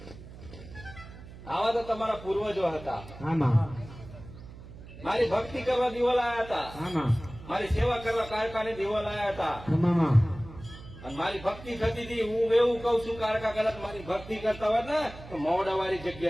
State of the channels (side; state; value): right; noise; hum, 16 dB below the sound